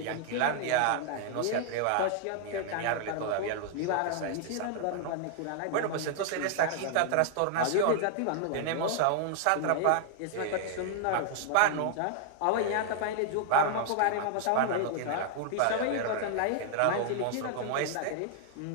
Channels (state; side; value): different; both; correlation 0.00